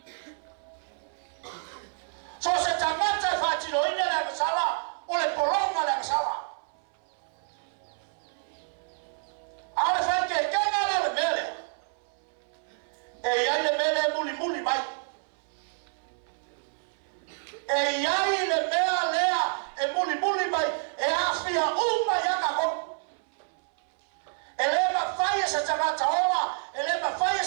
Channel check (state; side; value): silent; left; 59 dB below the other